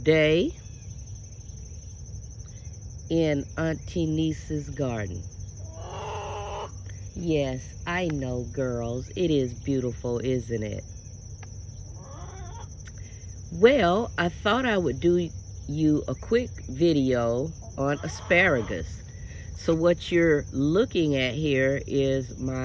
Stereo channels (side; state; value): both; identical; correlation 1.00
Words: in AN-T-NEES' garden. Yes, I know, girls, it is beautiful, isn't it? Well, I thought I would do you a quick video on asparagus. So what you're looking at here is